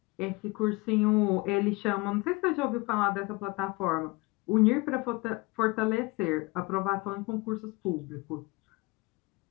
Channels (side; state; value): right; quieter; 24.2 dB